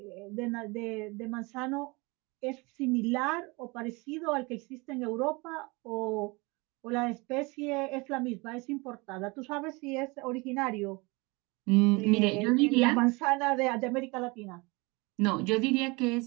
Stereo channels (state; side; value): quieter; left; 26.1 dB